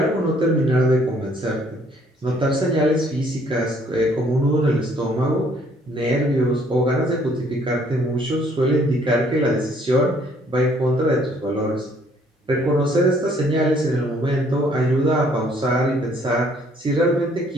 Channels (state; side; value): normal; both; correlation 0.63